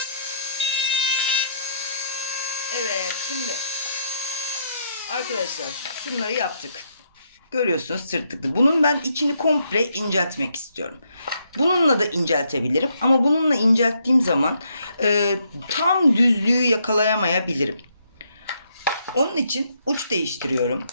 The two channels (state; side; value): inverted; both; correlation -0.74